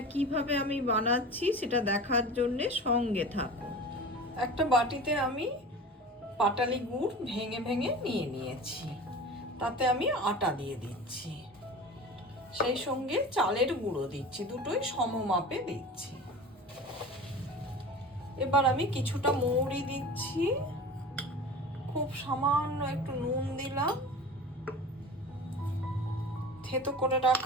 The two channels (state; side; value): normal; both; correlation 0.36